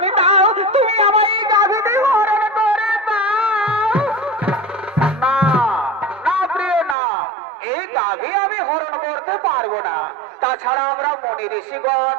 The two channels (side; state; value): left; drops out; at 7.0 s